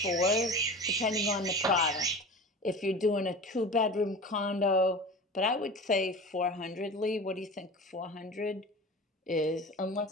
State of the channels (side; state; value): both; normal; correlation 0.34